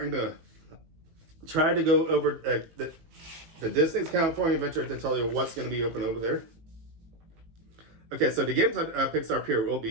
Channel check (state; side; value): late; left; 18 ms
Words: going to try to go over the Disney's California Adventure to tell you what's going to be open over there. Okay, so the games at Pixar Pier will